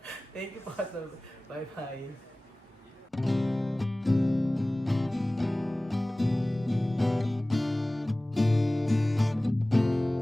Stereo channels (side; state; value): both; normal; correlation 0.98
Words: Thank you po. Bye-bye.